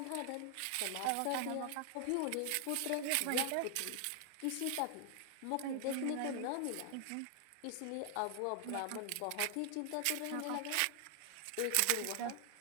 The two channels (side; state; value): both; different; correlation 0.00